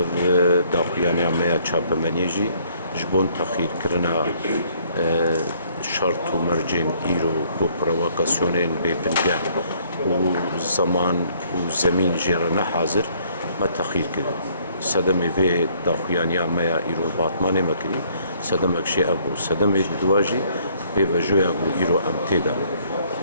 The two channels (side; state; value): both; inverted; correlation -0.63